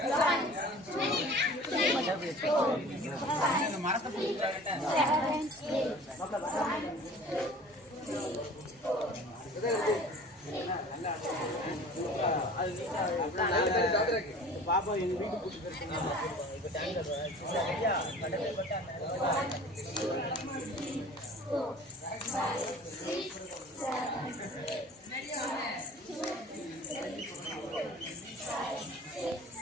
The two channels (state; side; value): normal; both; correlation 0.44